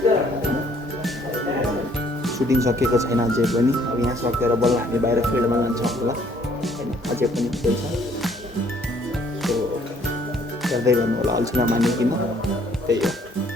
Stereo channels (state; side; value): normal; both; correlation 0.62